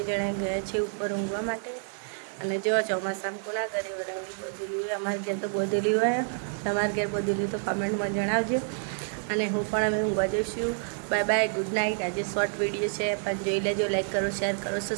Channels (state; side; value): silent; left; 59 dB below the other